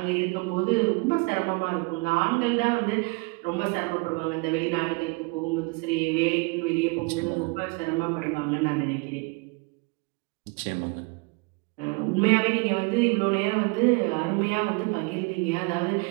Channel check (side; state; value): left; quieter; 29.1 dB